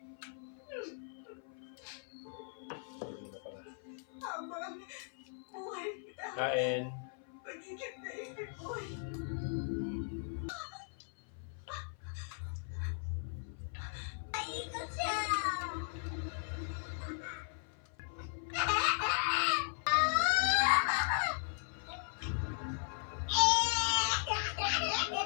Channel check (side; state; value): right; silent; 53 dB below the other